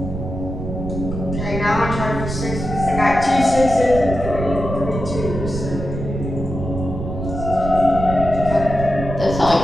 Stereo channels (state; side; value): noise; right; rumble, 6 dB below the sound